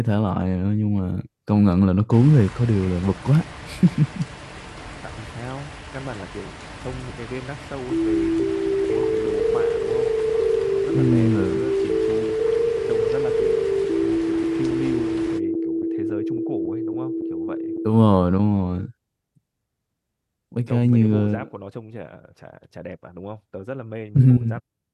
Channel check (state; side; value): identical; both; correlation 1.00